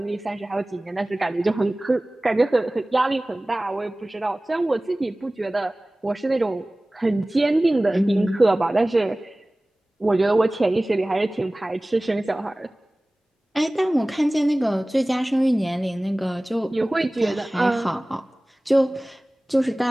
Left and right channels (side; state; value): both; normal; correlation 0.98